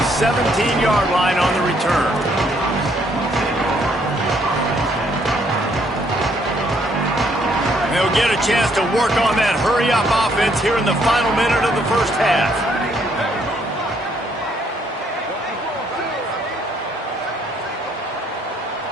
17-yard line on the return. They'll get a chance to work on that hurry-up offense here in the final minute of the first half.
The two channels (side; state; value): both; normal; correlation 0.69